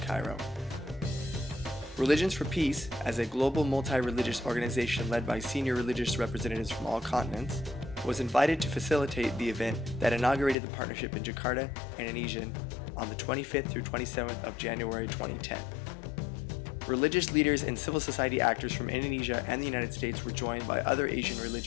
Religions for Peace, as a global multi-religious organization led by senior religious representatives from all continents, was invited to facilitate the event that inaugurated the partnership in Jakarta, Indonesia, on the 25th through 27th of January 2010. Religious leaders and civil society actors from Indonesia and the United States were joined by other Asian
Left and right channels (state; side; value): drops out; right; at 10.6 s